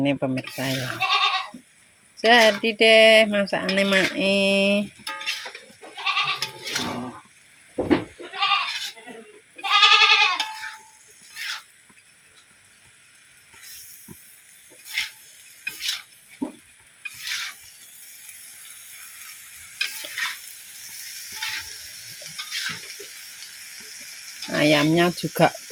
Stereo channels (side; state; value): both; identical; correlation 1.00